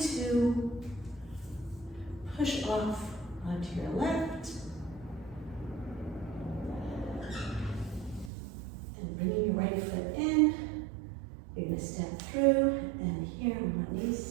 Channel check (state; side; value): drops out; left; at 8.3 s